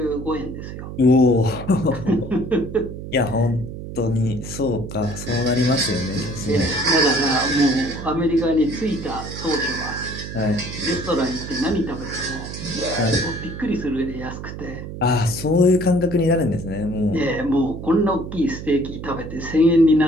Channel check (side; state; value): right; noise; hum, 9 dB below the sound